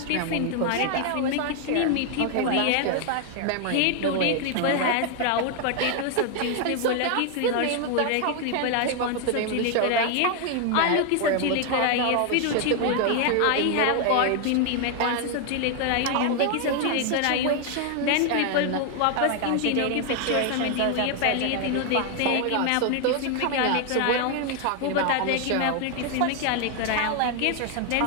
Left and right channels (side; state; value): both; different; correlation 0.00